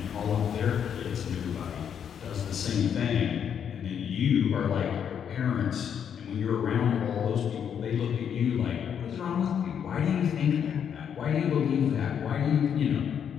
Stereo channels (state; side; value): quieter; right; 8.2 dB